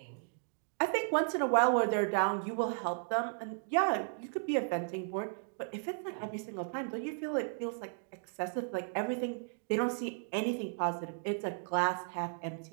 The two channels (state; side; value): silent; left; digital silence